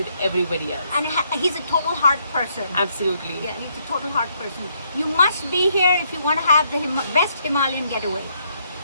everybody else. And he's a total heart person. Absolutely. Yeah, he's a total heart person. You must be here if you want to have the best Himalayan getaway.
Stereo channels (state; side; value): inverted; both; correlation -0.73